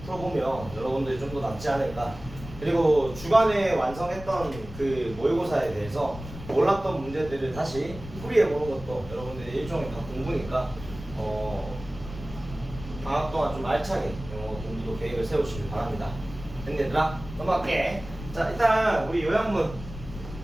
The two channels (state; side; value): noise; left; rumble, 13 dB below the sound